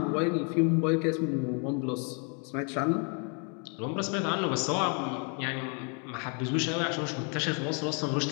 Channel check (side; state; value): right; quieter; 38.4 dB